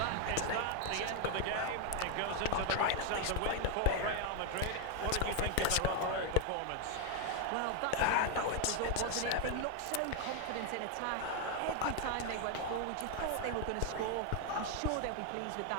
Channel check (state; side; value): different; both; correlation 0.00